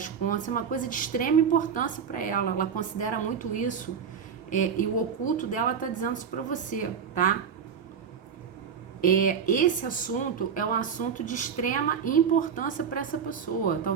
contas. É uma coisa de extrema importância para ela, ela considera muito isso, e o oculto dela tá dizendo isso para você, tá? Esse assunto é um assunto de extrema importância para essa pessoa.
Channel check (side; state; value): left; quieter; 7.1 dB